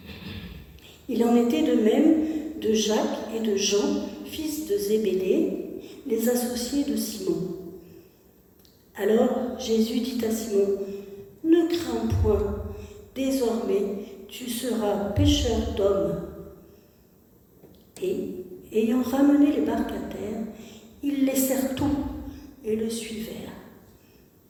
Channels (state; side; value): identical; both; correlation 1.00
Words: Il en était de même de Jacques et de Jean, fils de Zébédée, les associés de Simon. Alors Jésus dit à Simon, « Ne crains point, désormais tu seras pêcheur d'hommes. » Et, ayant ramené les barques à terre, ils laissèrent tout et le suivèrent.